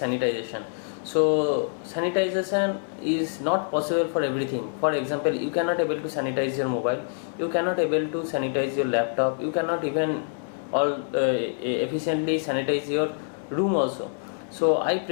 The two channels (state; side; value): silent; right; 61 dB below the other